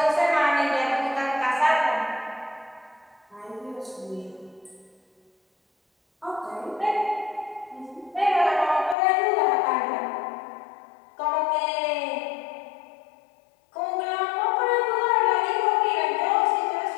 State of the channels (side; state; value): right; drops out; at 9.0 s